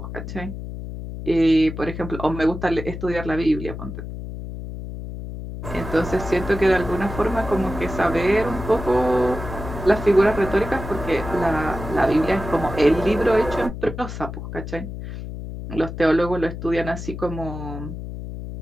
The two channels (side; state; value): left; noise; hum, 8 dB below the sound